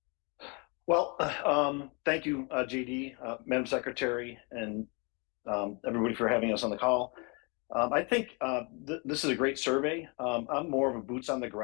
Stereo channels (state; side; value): quieter; right; 31.9 dB